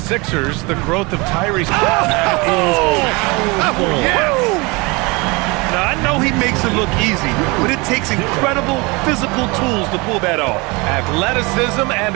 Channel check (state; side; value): quieter; left; 26.2 dB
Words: the growth of Tyrese. Now, I know he makes it look easy, but it takes incredible physical tools to pull that off. Athleticism